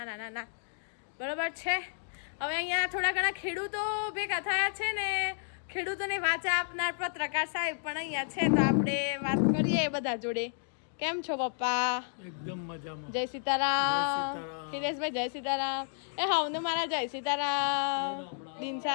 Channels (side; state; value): right; silent; digital silence